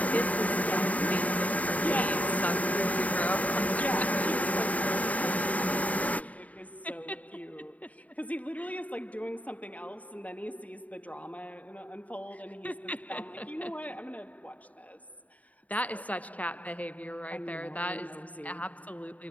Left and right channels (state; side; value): late; right; 0.071 ms